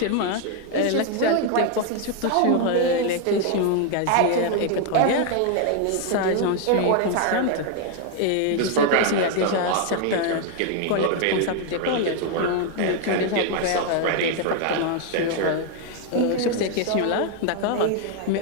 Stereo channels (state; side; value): different; both; correlation 0.01